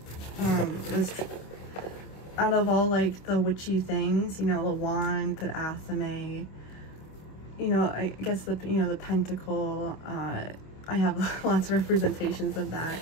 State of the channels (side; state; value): right; late; 26 ms